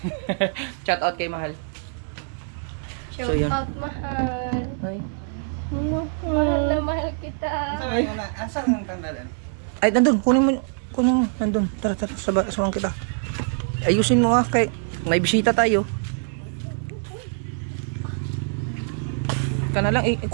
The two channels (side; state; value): left; silent; 59 dB below the other